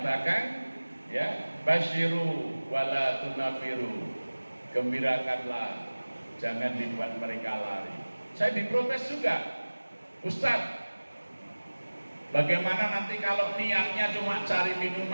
ya, basyiru wala tunafiru. Gembirakanlah, jangan dibuat mereka lari. Saya diprotes juga. Ustadz, bagaimana nanti kalau niatnya cuma cari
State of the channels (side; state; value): both; inverted; correlation -1.00